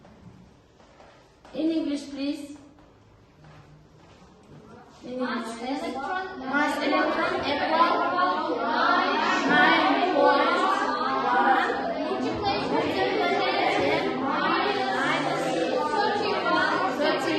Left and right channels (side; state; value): both; identical; correlation 1.00